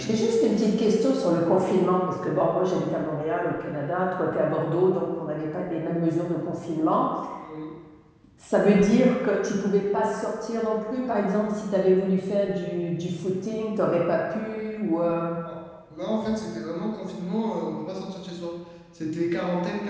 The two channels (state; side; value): identical; both; correlation 1.00